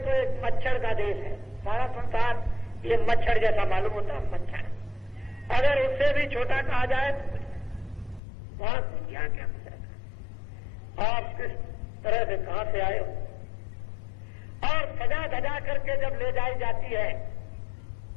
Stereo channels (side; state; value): right; drops out; at 8.2 s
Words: एक मच्छर का देश है। सारा संसार ये मच्छर जैसा मालूम होता है, मच्छर। अगर उससे भी छोटा कहा जाए तो वहां दुनिया क्या गुजरेगा, आप किस तरह से कहां से आए हो। और सजा धजा करके जब ले जाई जाती है